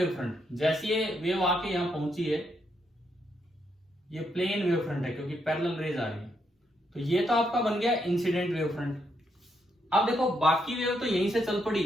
फ्रंट। जैसे ये वेव आके यहां पहुंची है, ये प्लेन वेव फ्रंट है क्योंकि पैरेलल रेज आ रही है। तो ये तो आपका बन गया इंसिडेंट वेव फ्रंट। अब देखो बाकी वेव तो यहीं से चल पड़ी,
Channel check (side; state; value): both; normal; correlation 0.78